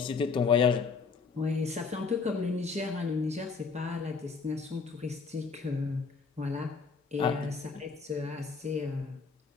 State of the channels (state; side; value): quieter; right; 4.9 dB